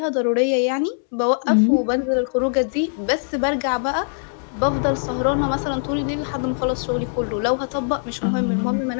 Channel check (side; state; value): right; silent; digital silence